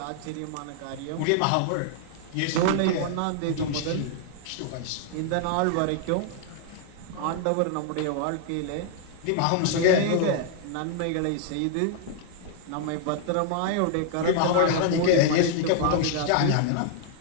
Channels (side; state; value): both; different; correlation -0.01